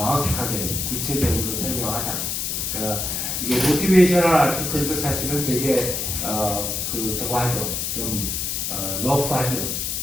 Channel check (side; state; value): left; noise; hiss, 2 dB below the sound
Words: 구체적으로 설명하다. 그러니까 이게 모티베이셔널 아티클도 사실은 되게 저거 하죠. 좀 러프하죠.